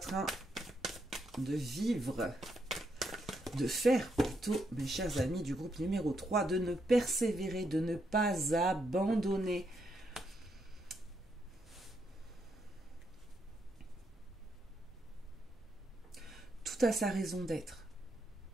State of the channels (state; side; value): normal; both; correlation 0.79